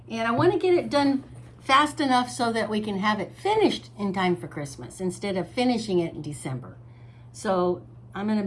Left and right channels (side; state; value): both; identical; correlation 1.00